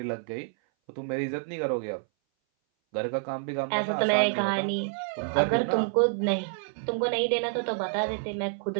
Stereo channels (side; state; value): left; silent; 58 dB below the other